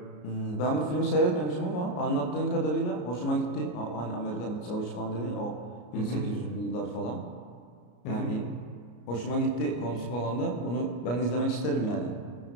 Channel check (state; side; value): late; right; 33 ms